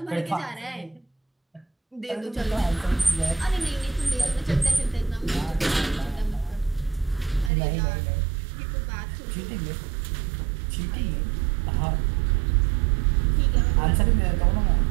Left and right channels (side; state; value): left; drops out; at 7.5 s